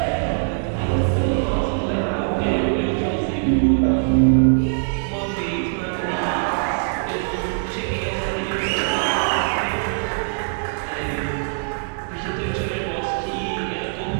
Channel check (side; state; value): left; silent; digital silence